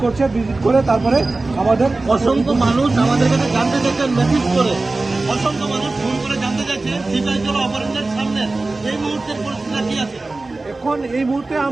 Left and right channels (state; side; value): quieter; left; 3.3 dB